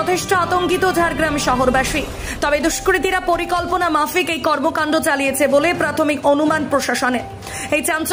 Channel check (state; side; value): identical; both; correlation 1.00